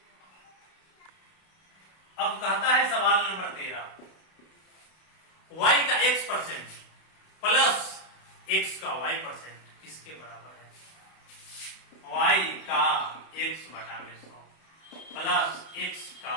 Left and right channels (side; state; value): right; late; 32 ms